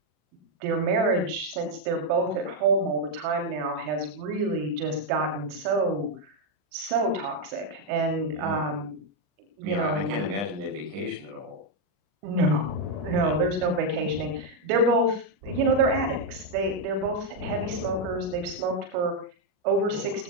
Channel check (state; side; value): late; left; 40 ms